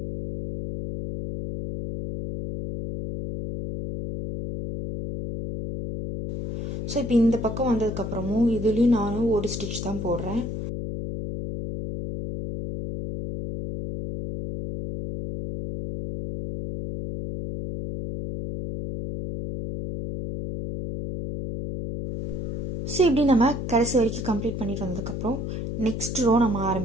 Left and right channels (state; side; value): noise; left; hum, 4 dB below the sound